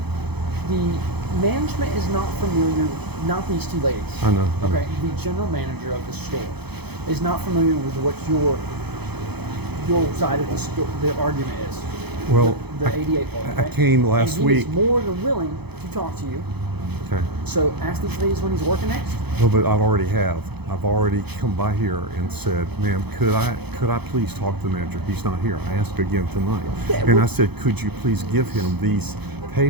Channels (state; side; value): late; left; 0.98 ms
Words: The management is not familiar. Not these two ladies. I know. I know. Okay. The general manager of the store is not familiar with what your side of the store, the argument is. Well, the 88 part. I okay? came last and he week. is more than willing to talk to you. Okay. So ask these ladies when he's working next. Well, but I've already have. I've already come by here and said, "Ma'am, could I please talk to the manager? He's not here." I asked again tonight, Yeah, and well- I said, "Could you please give him these